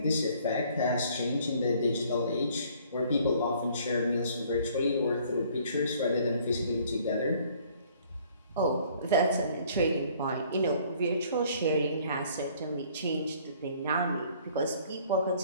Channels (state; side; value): inverted; both; correlation -0.58